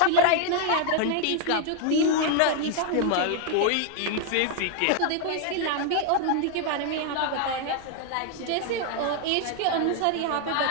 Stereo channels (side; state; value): both; different; correlation 0.00